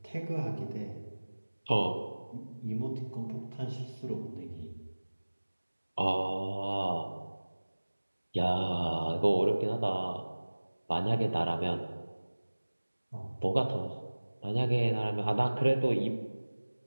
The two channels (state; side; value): inverted; both; correlation -1.00